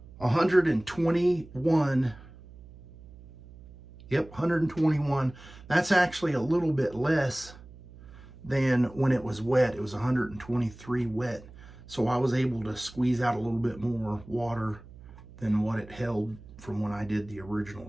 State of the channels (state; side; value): noise; right; hum, 19 dB below the sound